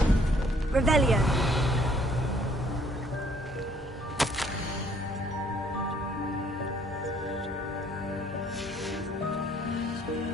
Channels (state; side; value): normal; both; correlation 0.62